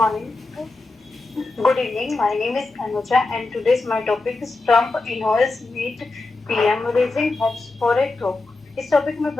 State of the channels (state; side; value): quieter; right; 3.3 dB